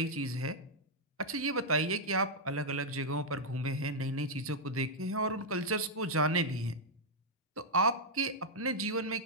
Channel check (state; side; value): normal; both; correlation -0.05